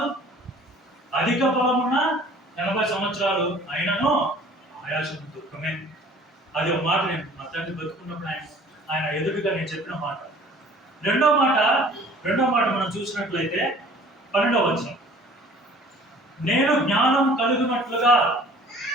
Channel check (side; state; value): both; normal; correlation 0.50